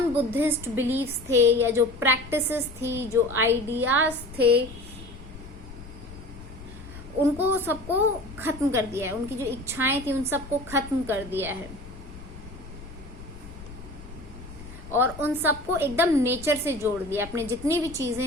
बुद्धिस्ट बिलीफ्स थे या जो प्रैक्टिसेस थी, जो आइडियाज थे, उनको सबको खत्म कर दिया है। उनकी जो इच्छाएं थी उन सबको खत्म कर दिया है और उन सबको एकदम नेचर से जोड़ दिया। अपने जितनी भी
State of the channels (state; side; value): noise; left; rumble, 15 dB below the sound